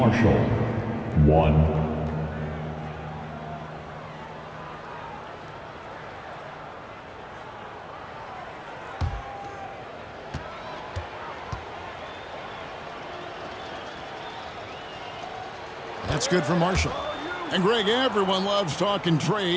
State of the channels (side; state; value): both; identical; correlation 1.00